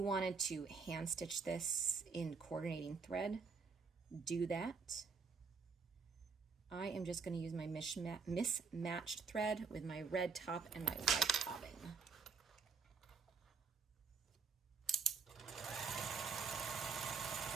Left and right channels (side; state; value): left; quieter; 5.3 dB